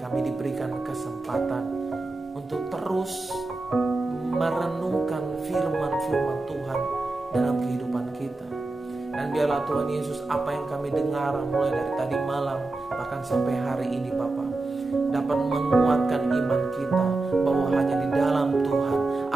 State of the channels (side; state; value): left; quieter; 3.2 dB